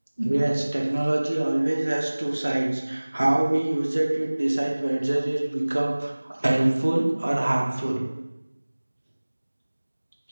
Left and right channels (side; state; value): both; inverted; correlation -1.00